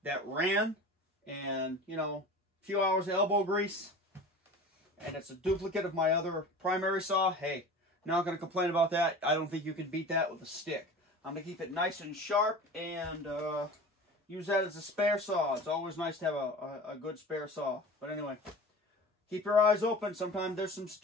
that ran, and a few hours of elbow grease, and it's a duplicate of my other primary saw. Hey, not going to complain about that. I don't think you can beat that with a stick. I'm going to keep it nice and sharp and use that as a spare saw. It's always nice to have a good spare saw. But anyway, keep your eyes open. Sometimes there's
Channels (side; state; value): both; normal; correlation 0.36